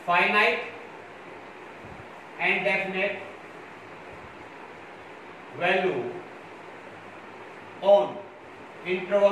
finite and definite value on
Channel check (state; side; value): identical; both; correlation 1.00